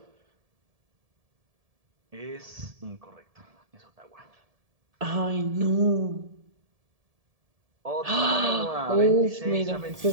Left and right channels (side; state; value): left; late; 1.7 ms